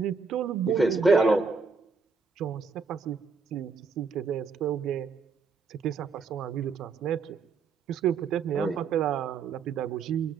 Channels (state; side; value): quieter; left; 5.0 dB